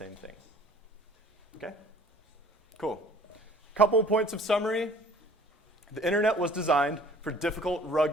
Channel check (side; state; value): both; normal; correlation 0.52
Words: thing. Okay? Cool. Couple points of summary. The internet was designed for difficult,